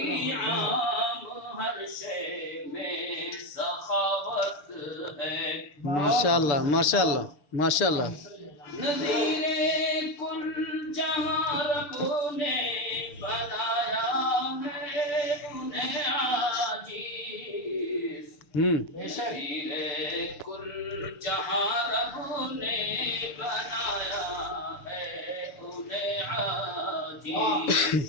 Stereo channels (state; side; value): late; right; 6.9 ms